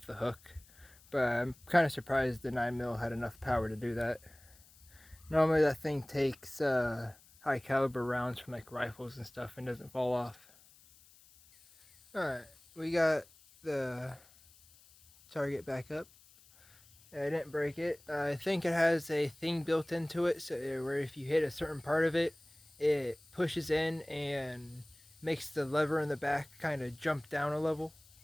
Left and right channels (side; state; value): left; noise; hiss, 26 dB below the sound